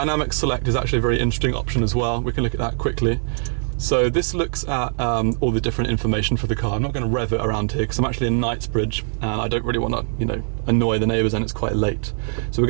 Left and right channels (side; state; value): left; silent; digital silence